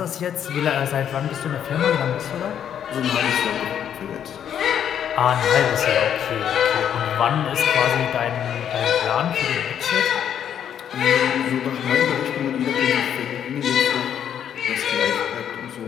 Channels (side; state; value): right; quieter; 9.2 dB